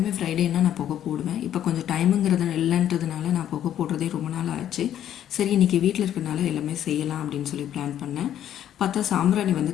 ஃப்ரைடேன்னா நான் புகை போடுவேன். இப்போ கொஞ்சம் டைமுங்கிறது இல்லைன்றதுனால நான் புகை போடுறதே ரொம்ப நாள் ஆச்சு. சரி, இன்றைக்கி வீட்டில் இருக்கிறனால எல்லாமே செய்யலாம் அப்படின்னு சொல்லி பிளான் பண்ணேன். பார்த்தா சாம்பிராணி வந்து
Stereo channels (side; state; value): right; quieter; 10.8 dB